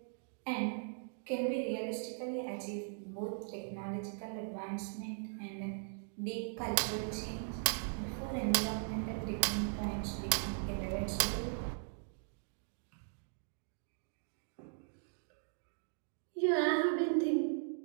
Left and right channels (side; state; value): left; silent; digital silence